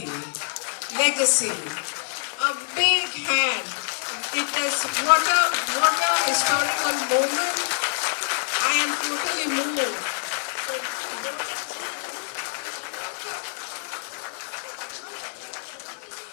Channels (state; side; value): silent; right; digital silence